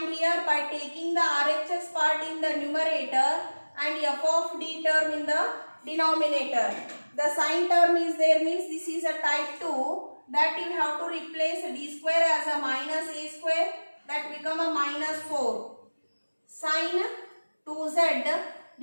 here by taking the RHS part in the numerator and f of d term in the denominator. The sine term is there, means this is a type 2, that you have to replace d square as a minus a square, that become a minus 4. Sine 2z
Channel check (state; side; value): inverted; both; correlation -1.00